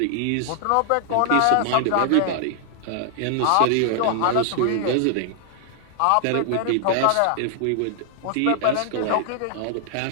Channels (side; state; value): both; different; correlation 0.00